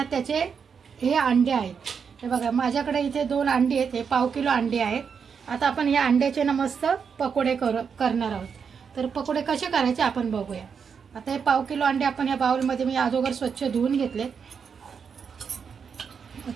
त्याचे हे अंडे आहेत। हे बघा, माझ्याकडे इथे 2 अंडी आहेत। हे पाव किलो अंडे आहेत। आता आपण या अंड्याचे ना मस्त पकोडे करणार आहोत। तर पकोडे कसे करायचे आपण बघूया। आता हे पाव किलो अंडे आपण या बाउलमध्ये मी अगोदर स्वच्छ धुवून घेतले।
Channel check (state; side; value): quieter; left; 6.4 dB